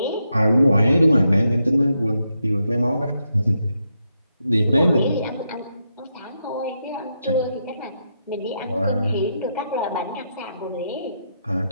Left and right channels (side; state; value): both; inverted; correlation -0.82